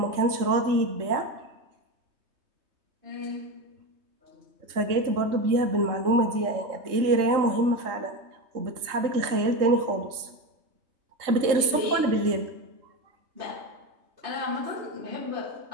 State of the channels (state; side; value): late; left; 3.2 ms